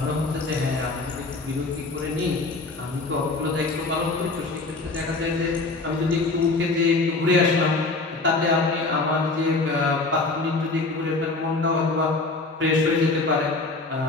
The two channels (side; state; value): right; quieter; 3.5 dB